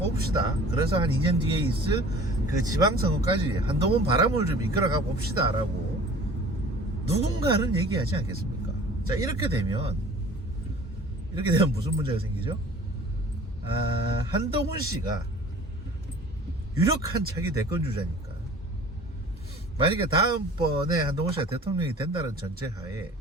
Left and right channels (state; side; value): normal; both; correlation 0.47